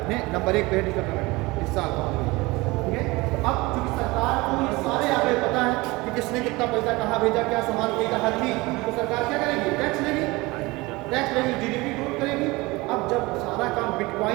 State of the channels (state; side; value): quieter; left; 22.5 dB